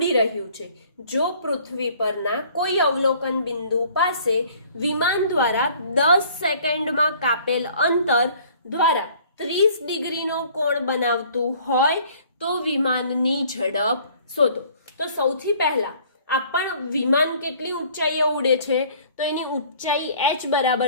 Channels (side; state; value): both; inverted; correlation -0.55